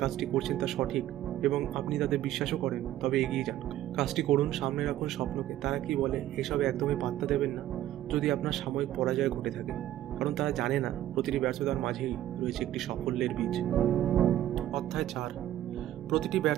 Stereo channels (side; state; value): left; quieter; 13.1 dB